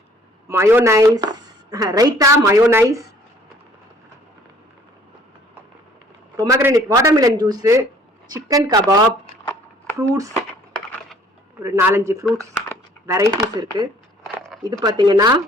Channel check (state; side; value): normal; both; correlation 0.57